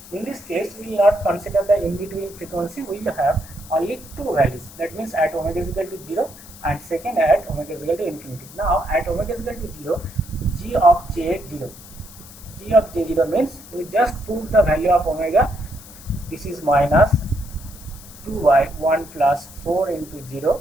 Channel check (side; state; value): left; noise; hiss, 18 dB below the sound